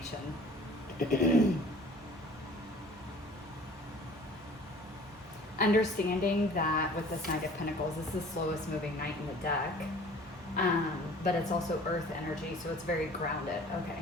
Understanding that with this Knight of Pentacles, this is the slowest moving knight in the deck. But it's also earth energy, so it's very grounded. Okay.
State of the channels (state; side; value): normal; both; correlation 0.48